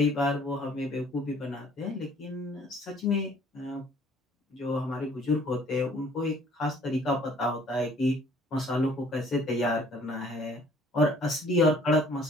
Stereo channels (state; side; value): normal; both; correlation 0.57